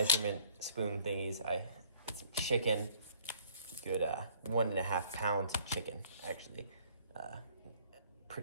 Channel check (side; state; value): both; inverted; correlation -0.57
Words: spoon thingies. Some chicken, good 1.5 pounds of chicken, actually.